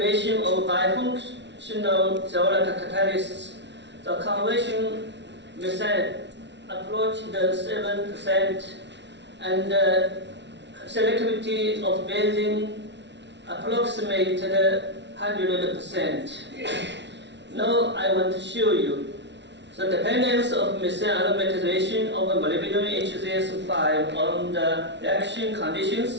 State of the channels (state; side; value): late; left; 0.51 ms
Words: of bifunctional zeolite catalysts. The conversion methane approached 7%, and selectivity of benzene approximated 100%. Now I want to show you the dependence of methane aromatization of molybdenum HZS5 on the reaction